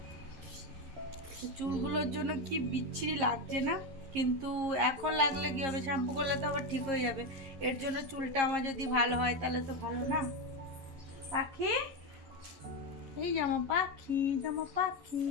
চুলগুলোর জন্য কি বিচ্ছিরি লাগছে না, কিন্তু এখন লাগলে কি হবে, শ্যাম্পু করলে তো আবার ঠিক হয়ে যাবে। এর জন্য চুলটা আমার যদি ভালো হয় তাহলে তো ভালো না। পাখি, এই জামা পাখি, জামা পাখি,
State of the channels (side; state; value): left; late; 11 ms